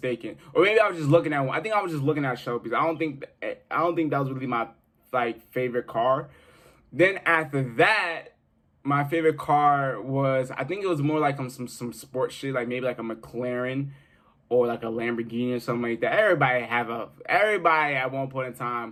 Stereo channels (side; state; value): both; identical; correlation 1.00